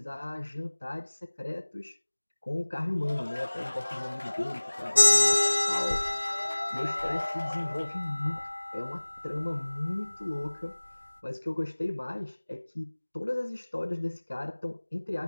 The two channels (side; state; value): both; inverted; correlation -1.00